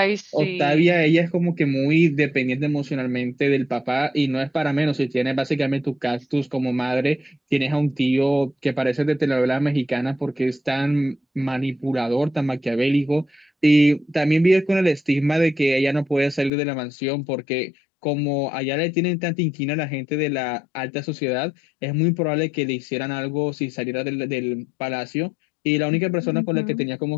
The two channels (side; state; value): right; drops out; at 16.5 s